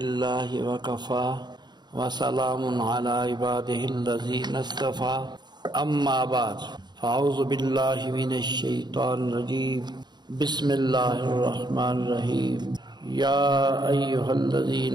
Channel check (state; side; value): late; left; 0.21 ms